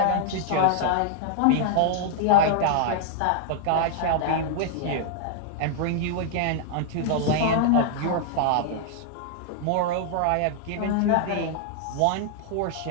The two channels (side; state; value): both; different; correlation -0.01